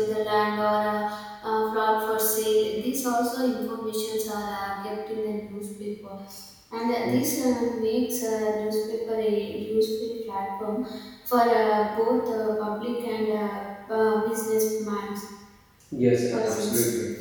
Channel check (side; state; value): both; identical; correlation 1.00